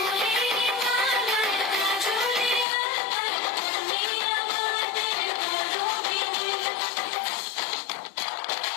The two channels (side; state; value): right; drops out; at 2.7 s